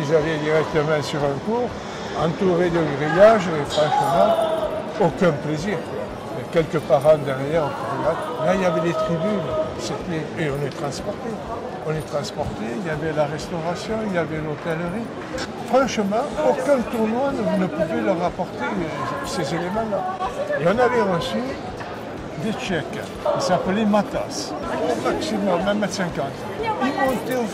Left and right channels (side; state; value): both; identical; correlation 1.00